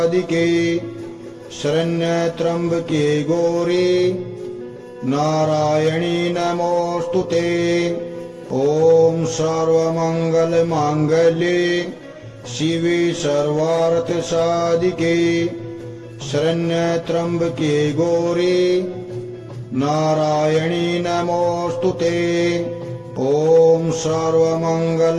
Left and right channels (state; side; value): identical; both; correlation 1.00